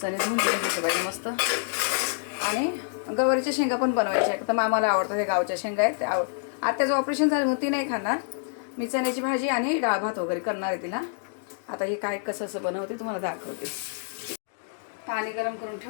धुवून घ्यायचे पाहिजे मस्त. आणि गवारीच्या शेंगा पण बनवायच्या आहेत. तर मामाला आवडतं, हे गावच्या शेंगा आहेत. आत्याचं ऑपरेशन झालं म्हणून ती नाही खाणार. मी चण्याची भाजी आणि डाळ भात वगैरे करणार आहे तिला. आता हे काय कसं बनवते तुम्हाला दाखवते. पाणी गरम करून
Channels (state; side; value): silent; right; digital silence